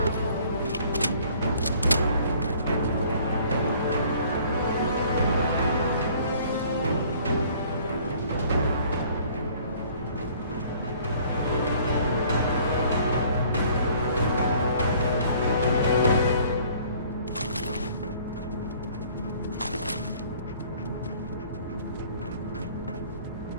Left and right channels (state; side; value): inverted; both; correlation -0.55